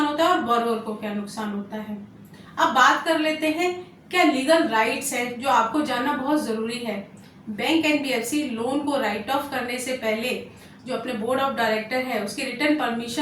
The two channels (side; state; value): both; identical; correlation 1.00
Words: होता है और बोरोअर को क्या नुकसान होता है। अब बात कर लेते हैं क्या लीगल राइट्स हैं जो आपको जानना बहुत जरूरी है। बैंक एनबीएफसी लोन को राइट ऑफ करने से पहले जो अपने बोर्ड ऑफ डायरेक्टर है उसकी रिटर्न